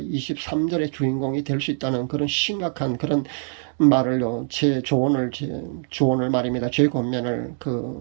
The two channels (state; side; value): silent; left; 63 dB below the other